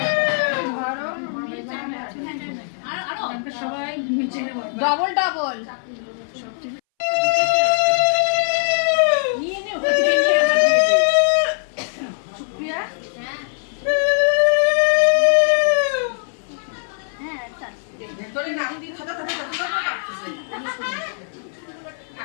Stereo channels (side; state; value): right; silent; 62 dB below the other